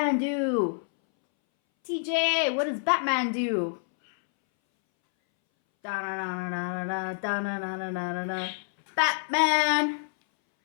do? TJ, what does Batman do? Da-na-na-na-na-na-na, Batman!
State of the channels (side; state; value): right; silent; 60 dB below the other